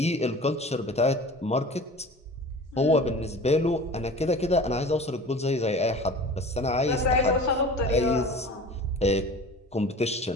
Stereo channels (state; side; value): normal; both; correlation 0.39